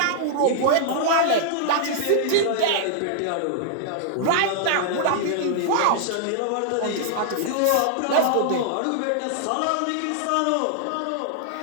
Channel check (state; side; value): different; both; correlation -0.01